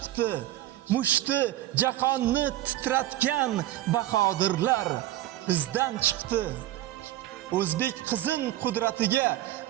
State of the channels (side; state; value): left; quieter; 14.4 dB